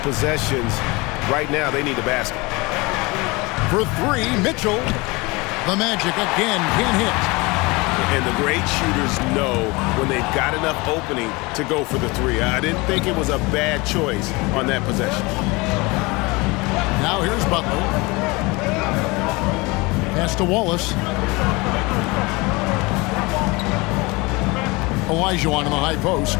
possessions. Right now, they need a basket. For three, Mitchell. The Magic again can't hit. And the great shooters know when they've got enough opening to go for the three. I didn't think it was a bad choice on that possession. Now here's Butler. Pass to Wallace. Olajuwon in the high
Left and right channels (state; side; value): quieter; right; 24.8 dB